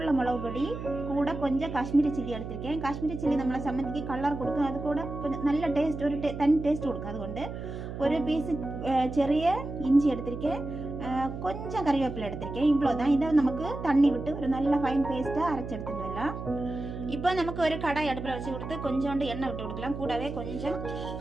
மிளகு பொடி, கூட கொஞ்சம் காஷ்மீரி சில்லி எடுத்திருக்கேன். காஷ்மீரி சில்லி நம்மளை சம்மந்திக்கு கலர் கொடுக்கும். அது கூட கொஞ்சம் நல்ல டேஸ்ட், ஒரு தனி டேஸ்ட் கொடுக்கும். அதுകൊണ്ട് ஒரு பீஸு சிறிய இஞ்சி எடுத்திருக்கேன். கொஞ்சம் கறிவேப்பிலை எடுத்திருக்கேன். இவ்வளோதான். இதை நமக்கு தண்ணி விட்டு ஒரு நல்ல ஃபைன் பேஸ்ட்டாக அரைச்சி எடுத்துட்டு வரலாம். இப்போ நமக்கு ஒரு கடாய் அடுப்பில் வச்சு கொடுத்து கொஞ்சோண்டு எண்ணெய் விட்டு கொடுக்கலாம். கூடவே கொஞ்சம்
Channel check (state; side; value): noise; right; hum, 8 dB below the sound